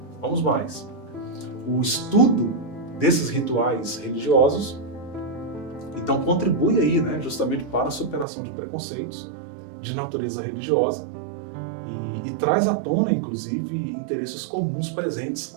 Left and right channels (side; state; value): left; drops out; at 8.2 s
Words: Vamos mais. O estudo desses rituais religiosos, então, contribui aí, né, justamente para a superação de preconceitos de natureza religiosa e traz à tona, inclusive, interesses comuns presentes